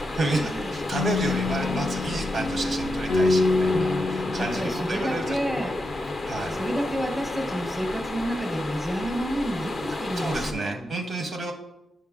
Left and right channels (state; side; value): normal; both; correlation 0.86